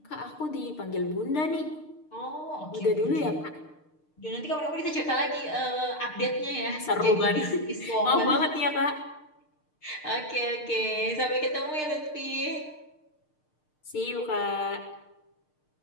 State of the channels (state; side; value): late; right; 6.6 ms